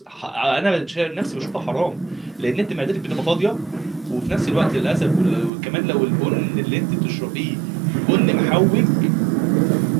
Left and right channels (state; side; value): drops out; left; at 5.5 s